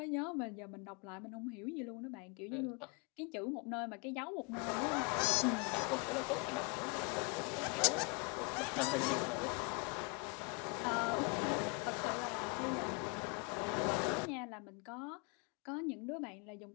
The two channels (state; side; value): quieter; right; 32.6 dB